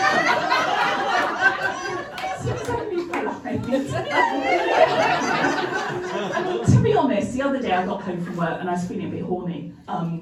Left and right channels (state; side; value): identical; both; correlation 1.00